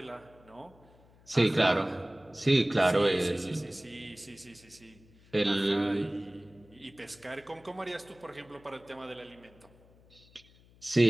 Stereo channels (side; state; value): left; noise; hum, 27 dB below the sound